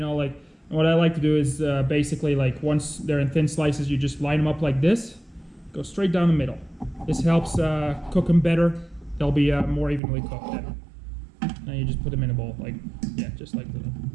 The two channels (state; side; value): drops out; left; at 10.0 s